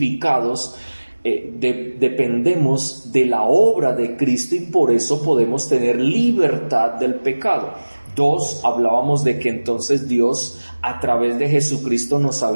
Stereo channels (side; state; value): both; inverted; correlation -1.00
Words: dependemos de la obra de Cristo, y por eso podemos tener libertad del pecado. 2, hablábamos de que entonces Dios a través de Jesucristo nos